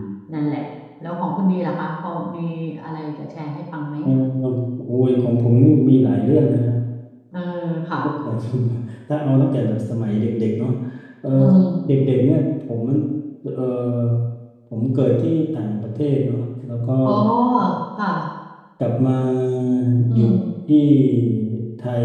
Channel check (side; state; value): both; identical; correlation 1.00